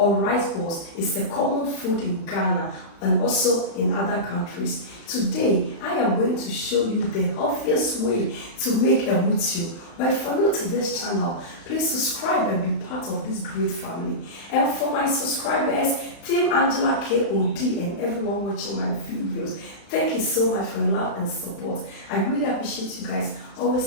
rice balls is a common food in Ghana and also in other countries. Today, I am going to show you the obvious way to make emotuo. But if you're new to this channel, please subscribe and be part of this great family. And for my subscribers, Team Angela K.O.D. and everyone watching my videos, thank you so much for your love and support. I really appreciate you guys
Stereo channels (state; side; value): late; right; 35 ms